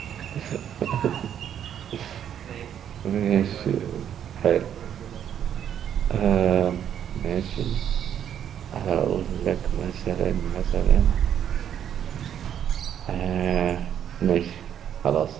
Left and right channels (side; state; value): left; quieter; 9.5 dB